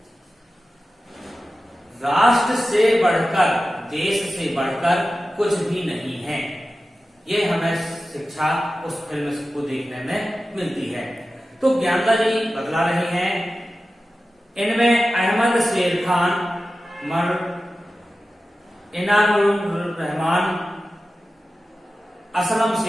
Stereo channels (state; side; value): normal; both; correlation 0.94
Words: राष्ट्र से बढ़कर, देश से बढ़कर कुछ भी नहीं है। ये हमें शिक्षा उस फिल्म को देखने में मिलती है। तो ज्ञानदा जी बतला रहे हैं, इनमें अहमद शेर खान, इनामुर रहमान, असलम